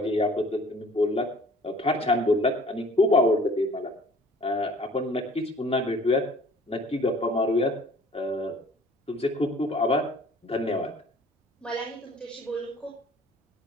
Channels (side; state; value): both; normal; correlation 0.52